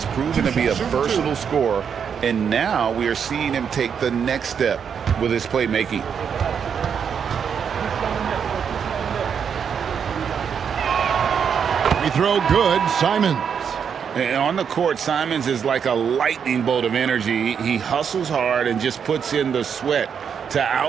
proven to be a versatile scorer, and now we are seeing him take the next step with his playmaking. Free throw good, Simons. And on the court, Simons is like a lightning bolt of energy. He hustles hard and just puts in the sweat to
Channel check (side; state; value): left; quieter; 7.2 dB